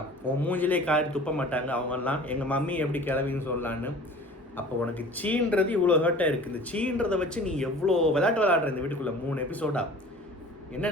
உன் மூஞ்சிலே காரி துப்ப மாட்டாங்க அவங்கெல்லாம், எங்கள் மம்மி எப்படி கிளவின்னு சொல்லலான்னு. அப்போ உனக்கு சீன்றது இவ்வளோ ஹர்ட்டாக இருக்குது. இந்த சீன்றதை வச்சு நீ எவ்வளோ விளையாடுற இந்த வீட்டுக்குள்ளே 3 எபிசோடா.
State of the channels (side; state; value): both; normal; correlation 0.43